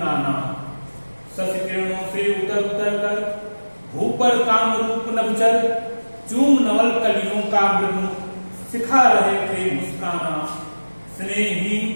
शशि किरणों से उतर उतर कर, भूपर काम रूप नभचर, चूम नवल कलियों का मृदु, सिखा रहे थे मुस्काना।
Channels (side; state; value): both; inverted; correlation -1.00